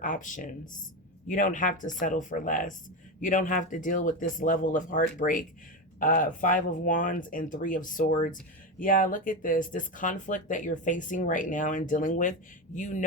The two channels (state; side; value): normal; both; correlation 0.16